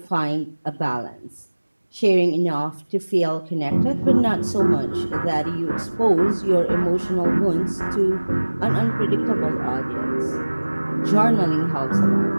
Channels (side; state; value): both; inverted; correlation -1.00